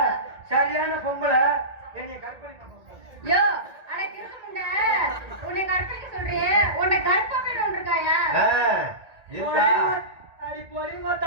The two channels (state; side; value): late; left; 1.8 ms